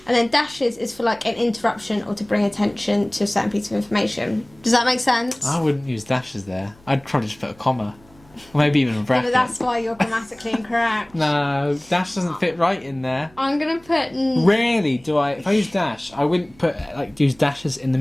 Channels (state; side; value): noise; right; hum, 27 dB below the sound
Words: And then dashes is for like an interruption or to bring attention to a certain piece of information. Does that make sense? I wouldn't use dashes there. I'd probably just put a comma. Or maybe even a bracket. But that's why you're grammatically incorrect. No, dash doesn't fit right in there. I'm gonna put. Rarely do I. If I use dash, I wouldn't put use dashes in the